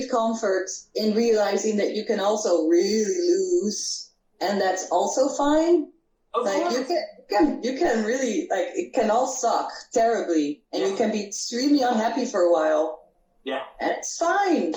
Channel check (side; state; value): both; identical; correlation 1.00